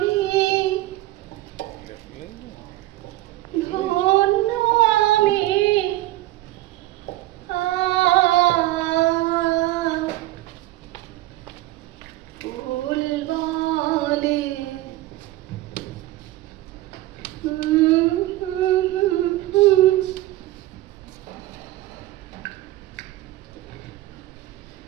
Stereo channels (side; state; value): left; quieter; 16.7 dB